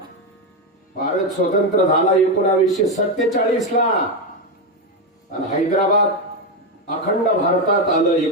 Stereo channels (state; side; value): normal; both; correlation 0.08